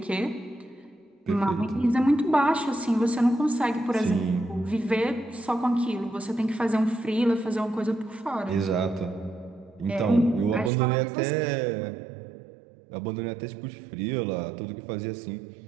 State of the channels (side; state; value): left; drops out; at 10.7 s